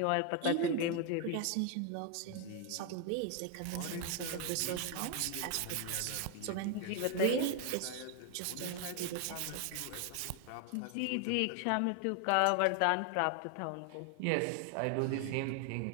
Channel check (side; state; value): both; different; correlation 0.01